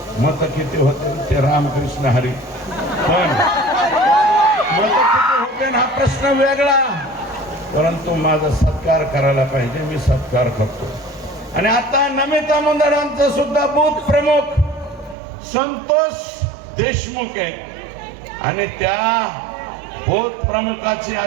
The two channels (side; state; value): left; drops out; at 15.2 s